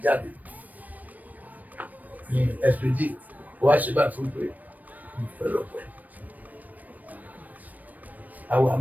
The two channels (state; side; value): late; left; 0.080 ms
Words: jáde ní Sbj ó wá ṣe báyìí fún pé mo fẹ́ lọ pẹ́ àwọn